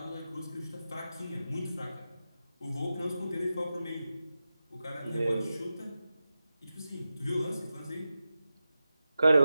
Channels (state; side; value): inverted; both; correlation -0.93